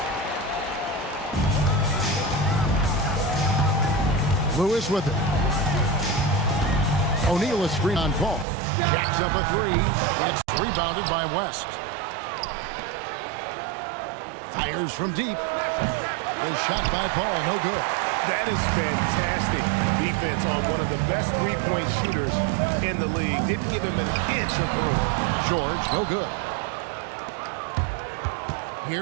Lewis with it. O'Neal is screen on Paul. Jacks up a 3. It's rebounded by West. Fires from deep. A shot by Paul, no good. That is fantastic defense on one of the best three-point shooters in the league. Didn't give him an inch of room. George, no good.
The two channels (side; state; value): left; drops out; at 8.5 s